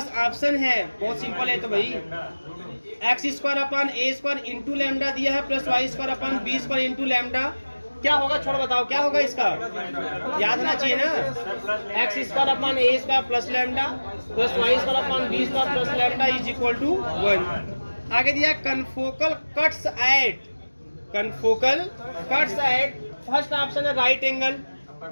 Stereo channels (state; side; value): inverted; both; correlation -1.00